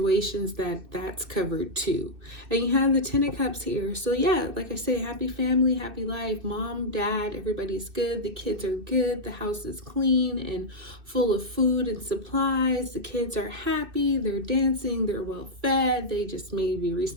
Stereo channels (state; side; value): late; left; 2.6 ms